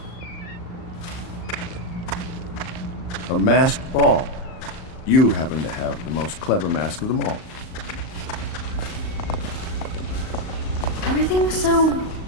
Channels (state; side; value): late; right; 38 ms